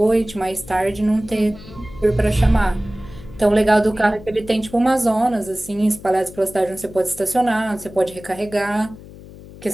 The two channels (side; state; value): left; noise; hum, 18 dB below the sound